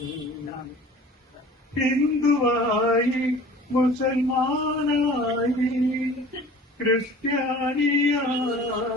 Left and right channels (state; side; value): normal; both; correlation 0.44